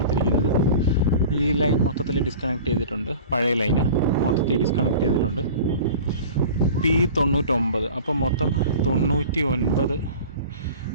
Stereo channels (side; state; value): both; inverted; correlation -0.39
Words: ഈ ലൈൻ മൊത്തത്തിൽ ഡിസ്കണക്ട് ചെയ്തിട്ടുണ്ട്. പഴയ ലൈന് മൊത്തത്തിൽ ഡിസ്കണക്ട് ചെയ്തിട്ടുണ്ട്. P99. അപ്പോൾ മൊത്തം 99